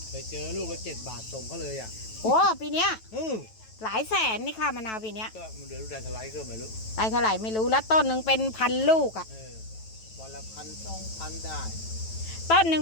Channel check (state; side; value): late; right; 9.1 ms